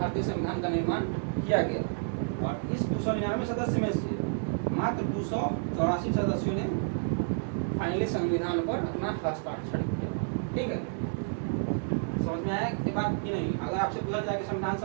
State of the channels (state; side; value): silent; left; digital silence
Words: संविधान का निर्माण किया गया। और इस 299 सदस्य में से मात्र 284 सदस्यों ने फाइनली संविधान पर अपना हस्ताक्षर किया, ठीक है। समझ में आया ये बात कि नहीं? अगर आपसे पूछा जाए कि संविधान